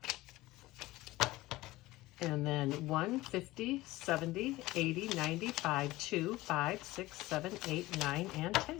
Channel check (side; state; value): right; quieter; 18.5 dB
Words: And then 1, 50, 70, 80, 95, 2, 5, 6, 7, 8, 9, and